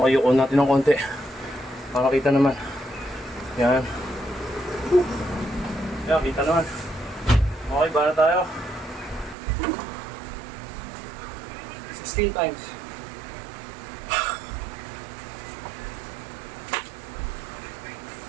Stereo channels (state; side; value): drops out; left; at 9.3 s